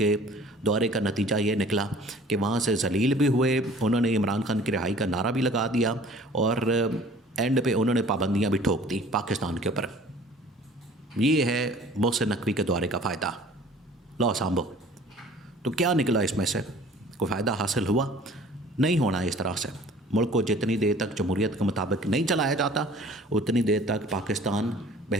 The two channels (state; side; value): normal; both; correlation 0.49